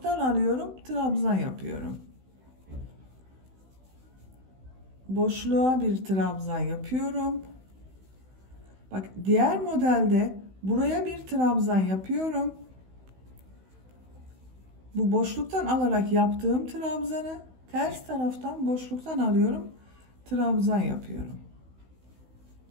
alıyorum. Trabzan yapıyorum. Boşluğa bir trabzan yapıyorum. Bak diğer modelde buraya bir trabzan yapıyorum. Bu boşluktan alarak yaptığım trabzanı ters taraftan boşluktan alıyorum. Trabzan yapıyorum.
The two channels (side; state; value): left; late; 16 ms